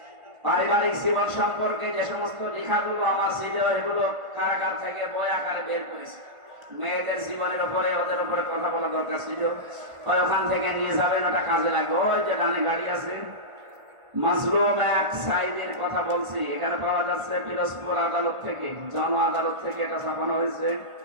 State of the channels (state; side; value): late; left; 1.5 ms